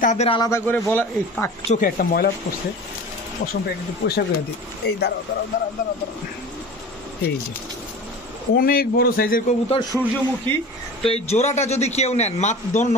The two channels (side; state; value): both; normal; correlation 0.36